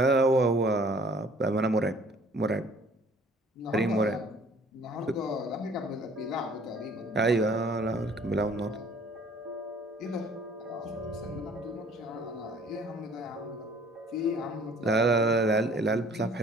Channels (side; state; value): both; normal; correlation 0.55